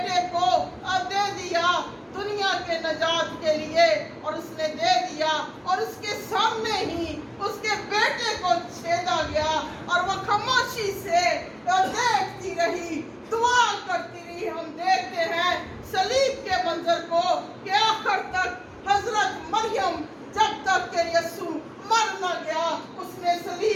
کو دے دیا دنیا کے نجات کے لیے, اور اس نے دے دیا اور اس کے سامنے ہی اس کے بیٹے کو چھیدا گیا, اور وہ خاموشی سے دیکھتی رہی, دعا کرتی رہی. ہم دیکھتے ہیں صلیب کے منظر کو کہ آخر تک حضرت مریم جب تک کہ یسوع مر نہ گیا اس نے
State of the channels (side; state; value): both; identical; correlation 1.00